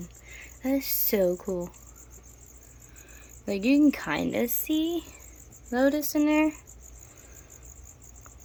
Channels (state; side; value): identical; both; correlation 1.00